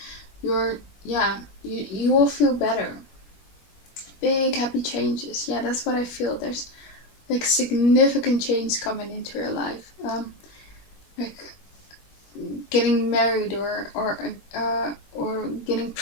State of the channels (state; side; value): late; right; 21 ms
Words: you will feel better. Big happy changes. Yeah, that's what I feel. There's like significant change coming into your life. Like getting married or getting